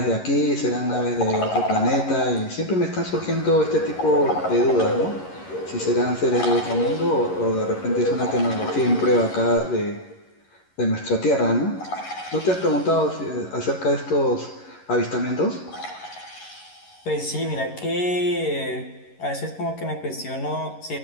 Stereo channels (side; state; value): right; late; 11 ms